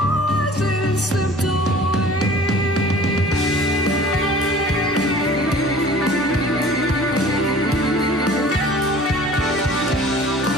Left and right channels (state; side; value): normal; both; correlation 0.46